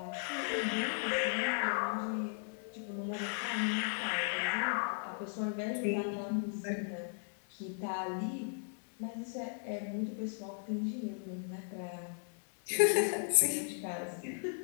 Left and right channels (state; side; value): silent; right; digital silence